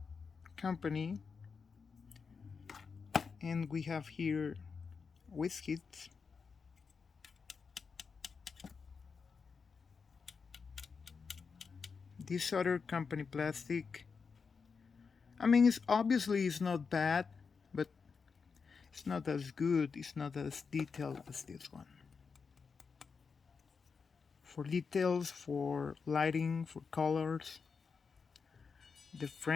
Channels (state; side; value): quieter; right; 5.4 dB